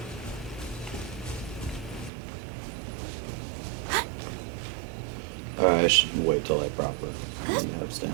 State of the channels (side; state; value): left; drops out; at 2.1 s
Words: Alright, I should wait till I proper have